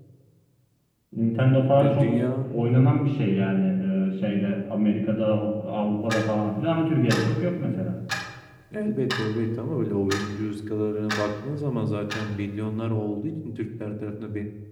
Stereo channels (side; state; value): both; identical; correlation 1.00